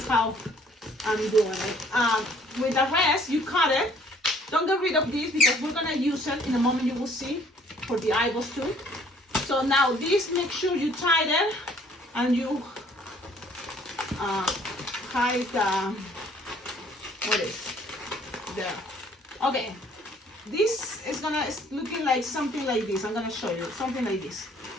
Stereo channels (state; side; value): normal; both; correlation 0.59